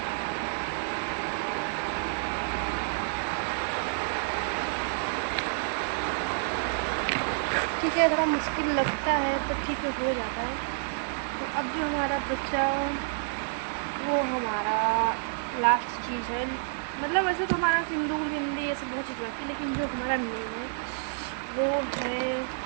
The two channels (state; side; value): silent; left; digital silence